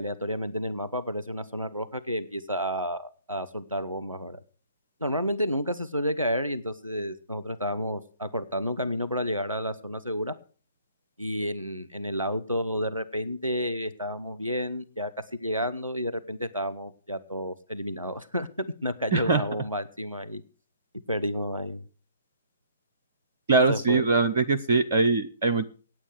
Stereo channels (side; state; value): both; inverted; correlation -0.59